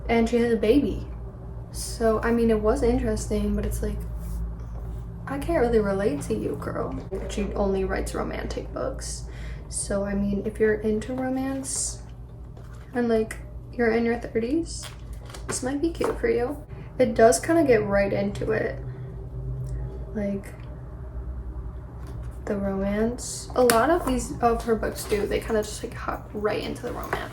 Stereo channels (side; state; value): both; identical; correlation 1.00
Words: and she has a baby. So, I mean, it was interesting, but it's like, I can't really relate to you, girl. She only writes romantic books. So, I mean, if you're into romance and like you're in your 30s, this might be cute for you. It does kind of get right into it. Like, the romance. A lot of her books do. They kind of just like hop right into the